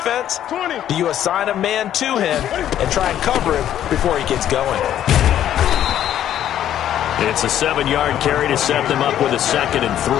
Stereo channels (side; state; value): right; quieter; 11.1 dB